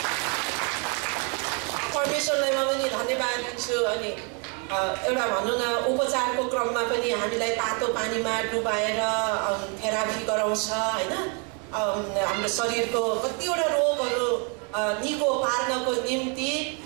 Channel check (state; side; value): quieter; left; 36.6 dB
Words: परमेश्वरलाई म पनि धन्यवाद दिन्छु। अनि एउटा भनौँ न, उपचारको क्रममा पनि हामीलाई तातो पानीमा डुबाएर थेरापी गराउँछ होइन। हाम्रो शरीरको कतिवटा रोगहरू निको पार्नको निम्ति।